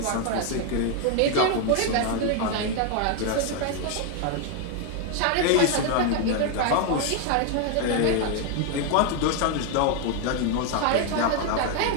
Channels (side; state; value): both; different; correlation 0.01